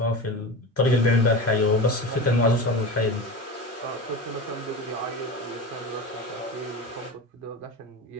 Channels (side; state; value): both; normal; correlation 0.27